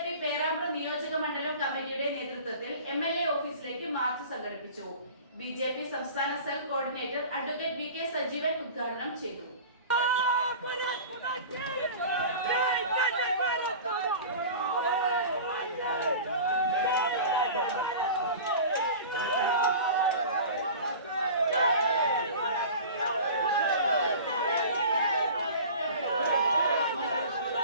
പേരാമ്പ്ര നിയോജക മണ്ഡലം കമ്മിറ്റിയുടെ നേതൃത്വത്തിൽ എംഎൽഎ ഓഫീസിലേക്ക് മാർച്ച് സംഘടിപ്പിച്ചു. ബിജെപി സംസ്ഥാന cell coordinator advocate V K Sajeevan ഉദ്ഘാടനം ചെയ്തു.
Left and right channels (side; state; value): both; inverted; correlation -0.38